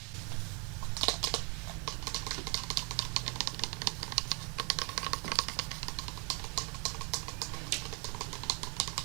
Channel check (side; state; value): left; quieter; 33.3 dB